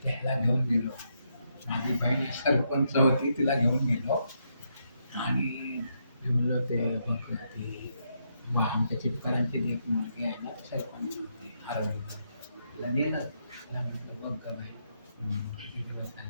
त्याला घेऊन गेलो. माझी बहीण सरपंच होती, तिला घेऊन गेलो आणि मी म्हणलं ते बघ ती आमच्या चिपकरांची एक मुलगी आहे ना, सरपंच होती हरवली. तिला नेलं, तिला म्हटलं बघ का बाई किती दिवस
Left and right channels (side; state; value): both; inverted; correlation -0.79